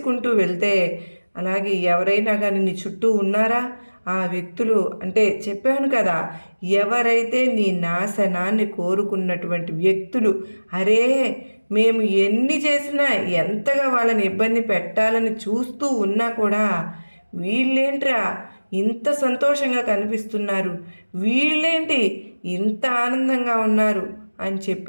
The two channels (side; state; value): both; inverted; correlation -1.00